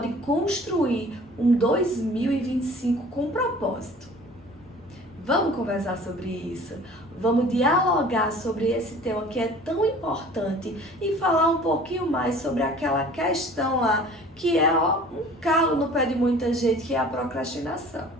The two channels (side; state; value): both; normal; correlation 0.47